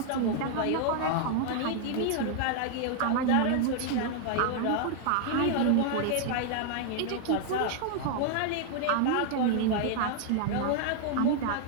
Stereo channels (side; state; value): both; different; correlation 0.00